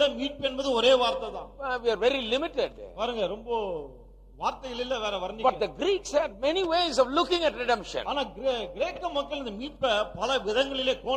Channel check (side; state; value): both; identical; correlation 1.00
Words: மீட்பு என்பது ஒரே வார்த்தை தான். We are very limited. பாருங்க ரொம்ப வார்த்தைகள் இல்ல வேற வர்ணிக்க. But the Greeks had many ways of looking at redemption. ஆனா கிரேக்க மக்கள் இந்த மீட்பை பல விதங்களிலே